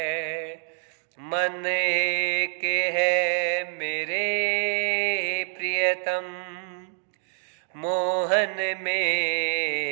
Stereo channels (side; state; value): left; silent; 61 dB below the other